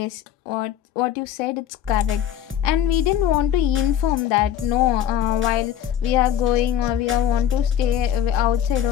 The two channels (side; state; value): right; quieter; 10.1 dB